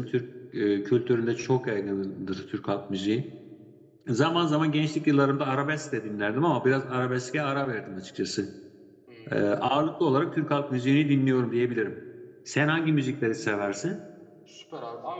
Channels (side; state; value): both; identical; correlation 1.00